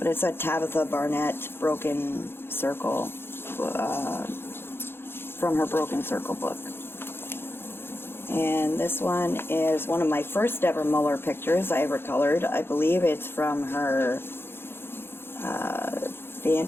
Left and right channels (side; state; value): right; late; 0.11 ms